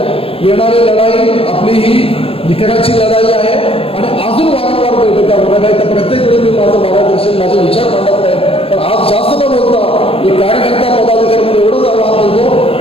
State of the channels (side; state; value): right; late; 0.28 ms